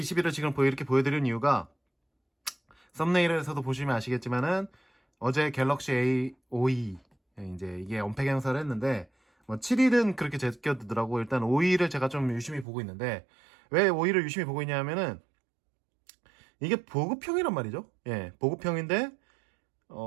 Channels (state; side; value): drops out; left; at 12.7 s